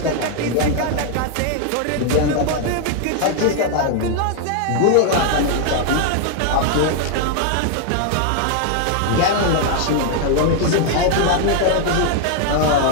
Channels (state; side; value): different; both; correlation 0.00